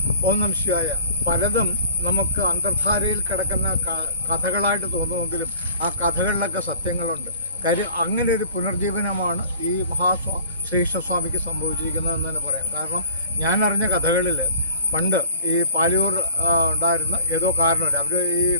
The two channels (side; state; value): both; inverted; correlation -0.48